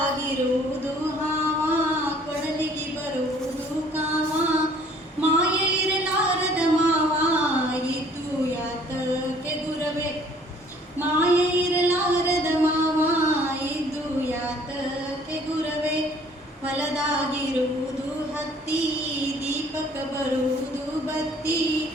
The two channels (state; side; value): normal; both; correlation 0.56